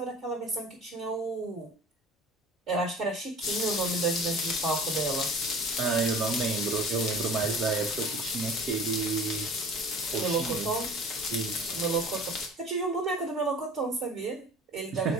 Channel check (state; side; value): normal; both; correlation 0.43